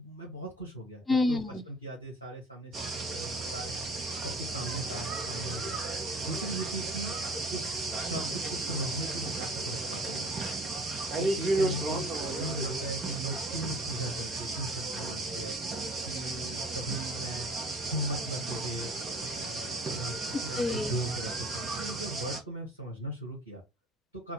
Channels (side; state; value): both; normal; correlation 0.49